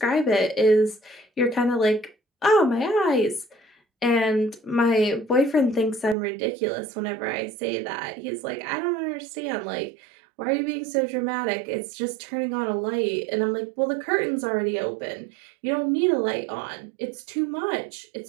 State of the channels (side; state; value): left; drops out; at 6.2 s